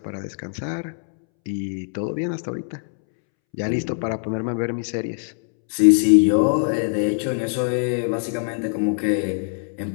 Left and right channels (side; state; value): right; silent; 64 dB below the other